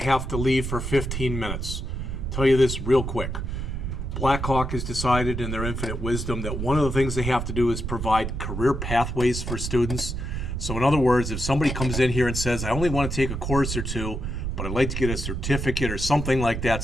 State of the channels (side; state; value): right; noise; rumble, 4 dB below the sound